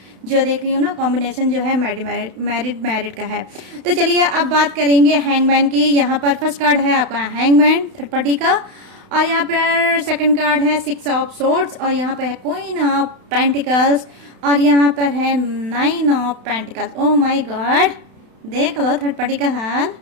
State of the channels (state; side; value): late; left; 32 ms